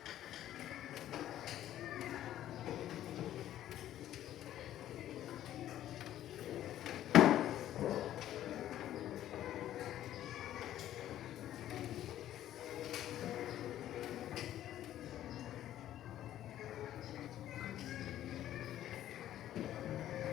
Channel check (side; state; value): right; quieter; 12.4 dB